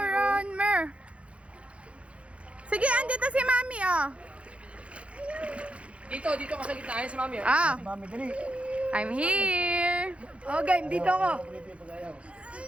Ronmer! Sige, andito si Mami, oh. Dito ka sa gitna. Ayan si Mami. Ah, Mami, dali. I'm here. Oh, game, dito ako.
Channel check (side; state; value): left; late; 0.061 ms